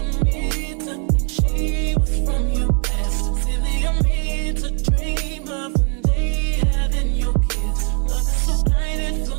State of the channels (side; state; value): left; quieter; 39.2 dB